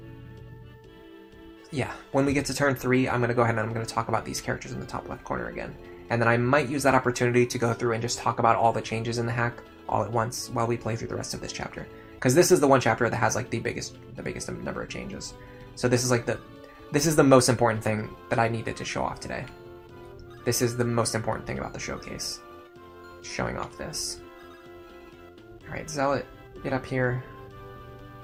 yeah, when we get to turn 3, I'm going to go ahead and I'm going to talk about these characters in the top left corner again. And then I might use that opportunity to go through and just talk about all the changes in the hack all at once while we play through the rest of this chapter. Because this is the one chapter that has like the biggest number of changes. So this is like this is the most important thing that I needed to show off today. This is the most important thing about the showcase. Showing off this. Alright, Zealot, get up here.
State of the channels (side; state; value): both; identical; correlation 1.00